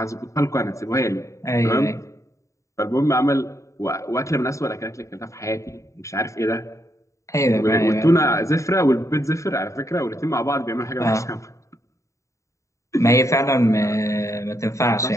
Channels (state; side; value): late; right; 0.15 ms